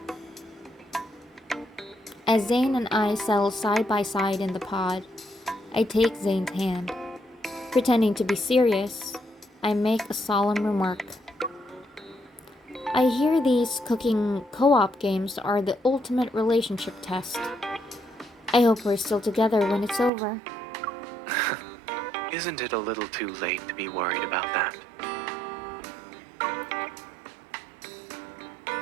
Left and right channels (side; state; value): left; drops out; at 20.1 s